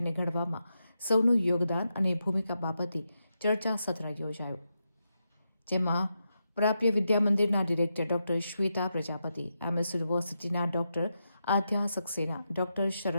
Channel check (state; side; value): inverted; both; correlation -0.86